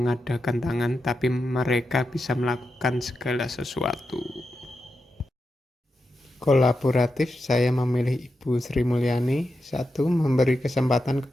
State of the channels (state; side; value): normal; both; correlation 0.88